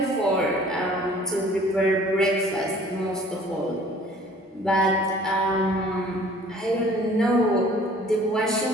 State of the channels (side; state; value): both; normal; correlation 0.52